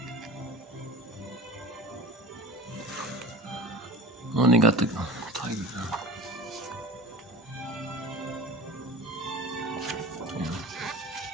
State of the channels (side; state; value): both; normal; correlation 0.35